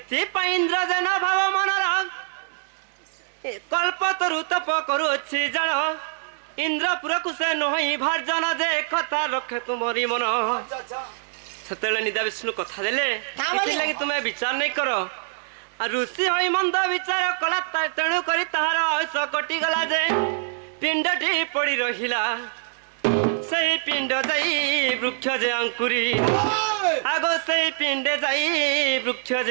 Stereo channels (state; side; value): silent; left; digital silence